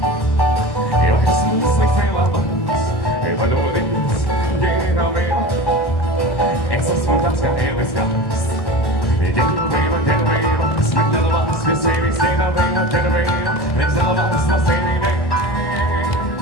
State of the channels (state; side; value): late; right; 1.1 ms